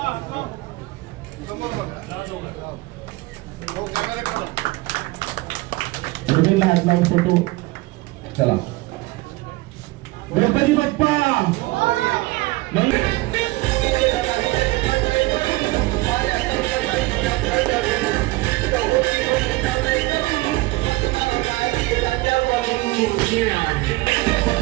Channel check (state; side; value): quieter; left; 21.2 dB